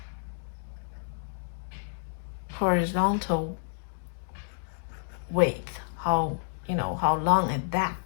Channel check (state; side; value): silent; right; digital silence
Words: horizontal width, how long is that?